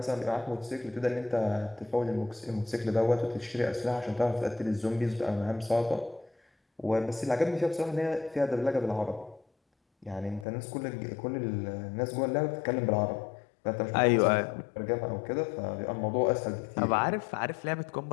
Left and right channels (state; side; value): drops out; right; at 10.5 s